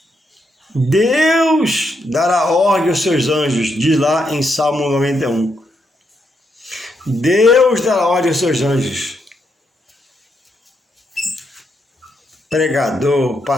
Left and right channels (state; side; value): normal; both; correlation 0.79